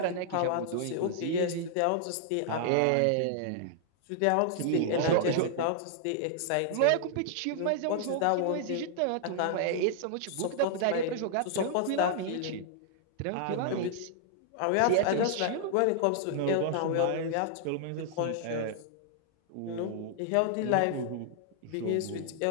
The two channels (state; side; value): different; both; correlation -0.01